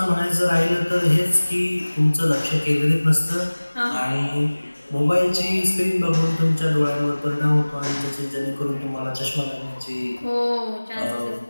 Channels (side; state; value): both; inverted; correlation -1.00